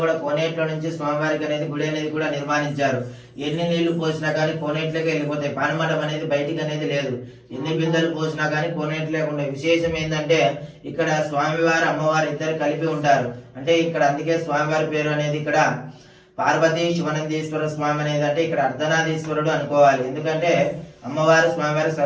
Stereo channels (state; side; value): identical; both; correlation 1.00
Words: కూడా కోనేట్లో నుంచి స్వామివారికి అనేది గుడి అనేది కూడా నిర్మాణించారు. ఎన్ని నీళ్లు పోసినా కానీ కోనేట్లోకి వెళ్ళిపోతాయి. పానమడం అనేది బయటికి అనేది లేదు. ఎన్ని బిందెలు పోసినా కానీ కోనేట్లోకి ఉండే విశేషం ఏంటంటే ఇక్కడ స్వామివారు అమ్మవారు ఇద్దరు కలిపి ఉంటారు. అంటే ఇక్కడ అందుకే స్వామివారి పేరు అనేది ఇక్కడ పార్వతీ శివనందీశ్వర స్వామి అనేది అంటే ఇక్కడ అర్ధనారీశ్వరుడు అనుకోవాలి. ఎందుకంటే అమ్మవారు స్వామివారి